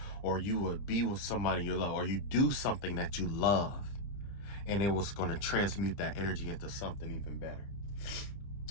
or you would be with somebody you love, or you do something that you love, and it was going to transmute that energy into something even better.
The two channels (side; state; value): right; late; 30 ms